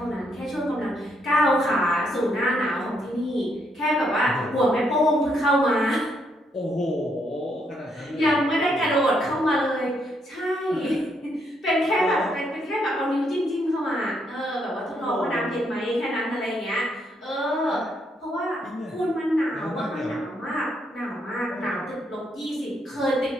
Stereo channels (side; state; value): both; normal; correlation 0.75